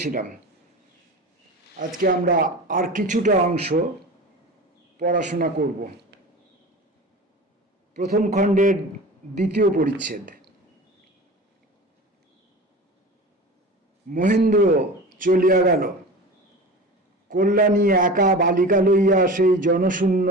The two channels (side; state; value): both; normal; correlation 0.34